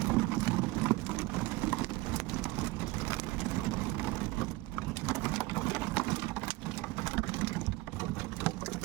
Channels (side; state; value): left; quieter; 20.4 dB